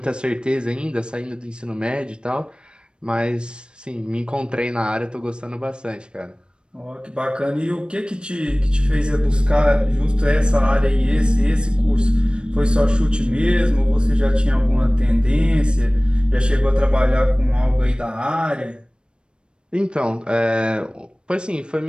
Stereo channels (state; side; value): late; left; 0.053 ms